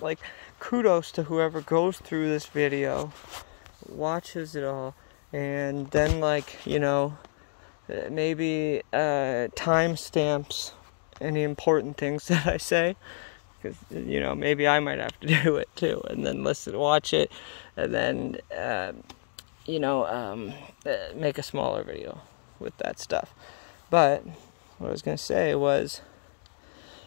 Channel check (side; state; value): right; silent; digital silence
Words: kudos to whoever goes through this video, watches it all, and then maybe timestamps any important things that I say, because maybe I might have to do it too, and then watch it, and then make a smaller video with that stuff. But what I was gonna say was